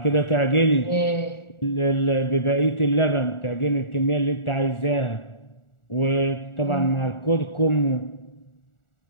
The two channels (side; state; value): right; late; 1.4 ms